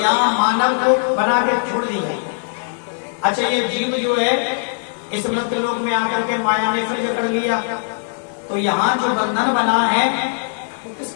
मानव को बना के छोड़ दिया। अच्छा ये जीव जो है इस मृत्यु लोक में आकर के माया ने फिर जकड़ लिया, तो यहाँ जो बंधन बना है वो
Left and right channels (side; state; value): right; silent; digital silence